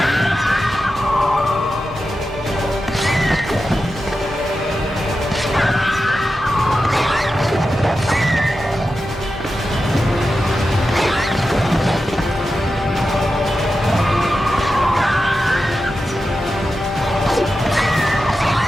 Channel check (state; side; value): normal; both; correlation 0.91